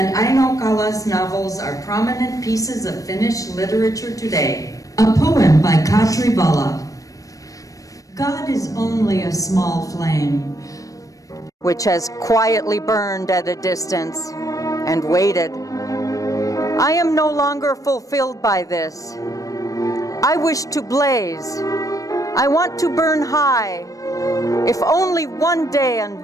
Aino Kala's novels are prominent pieces of Finnish literature today. A poem by Katri Vala. God is only a small flame, which has quietly burned at a distance and waited. I am no longer fulfilled by this. I wish to blaze. I want to burn high, if only one day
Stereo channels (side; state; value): right; late; 0.16 ms